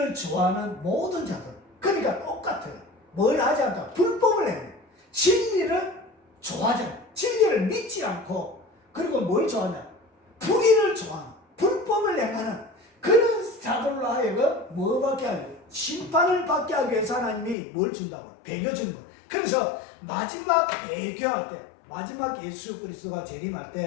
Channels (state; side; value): drops out; right; at 17.6 s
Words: 좋아하는 모든 자들. 그러니까 똑같아요. 뭘 하지 않다? 불법을 해요. 진리를 좋아하지 않고, 진리를 믿지 않고, 그리고 뭘 좋아하냐? 불의를 좋아하는, 불법을 행하는 그런 자들로 하여금 뭐 받게 하려고? 심판을 받게 하기 위해서 하나님이 뭘 준다고? 배교 준 거예요. 그래서 마지막 배교할 때, 마지막 예수 그리스도가 재림할